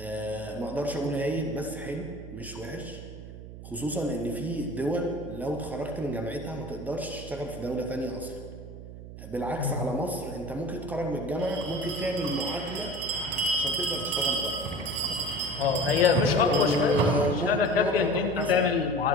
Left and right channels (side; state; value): right; noise; hum, 13 dB below the sound